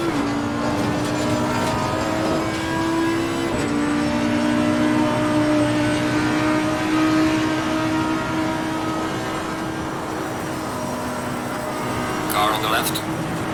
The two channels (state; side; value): identical; both; correlation 1.00